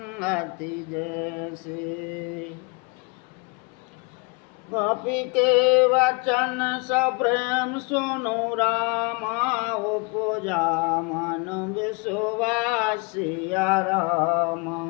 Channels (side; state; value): right; quieter; 29.6 dB